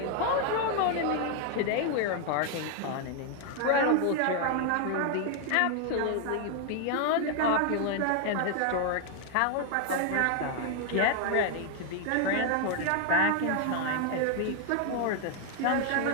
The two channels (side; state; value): both; different; correlation 0.00